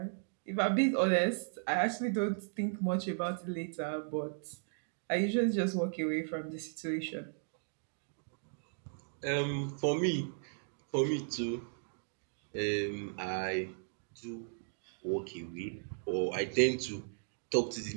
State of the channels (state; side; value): silent; left; digital silence